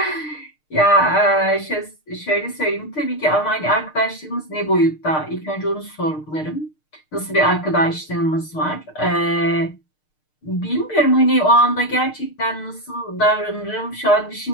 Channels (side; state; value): right; late; 6.5 ms